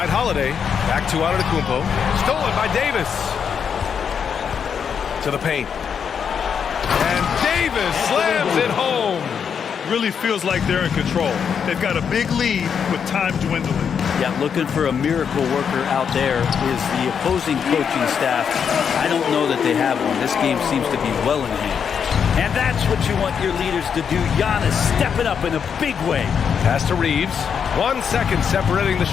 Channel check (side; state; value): right; quieter; 7.1 dB